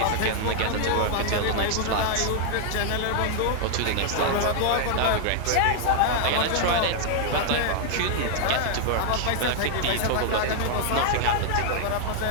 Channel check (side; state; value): both; different; correlation 0.00